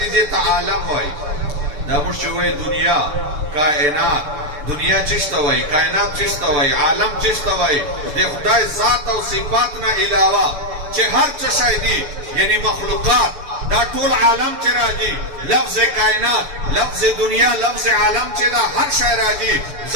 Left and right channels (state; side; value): late; left; 6.9 ms